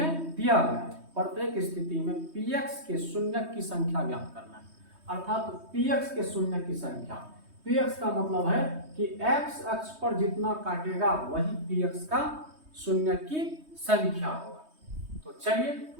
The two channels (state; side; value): late; left; 3.2 ms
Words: दिया गया है। प्रत्येक स्थिति में px के शून्यक की संख्या ज्ञात करना है। अर्थात px के शून्यक की संख्या, px का मतलब है कि x अक्ष पर जितना काटेगा वही px का शून्यक की संख्या होगा। तो चलिए